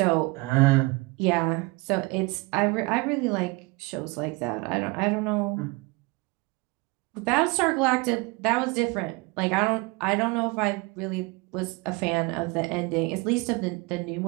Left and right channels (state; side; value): quieter; left; 25.5 dB